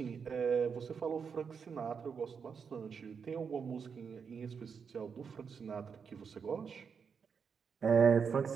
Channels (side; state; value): left; quieter; 6.3 dB